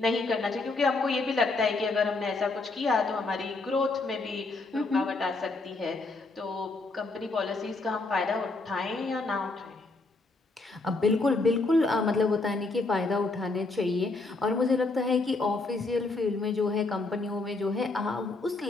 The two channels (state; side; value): quieter; right; 3.4 dB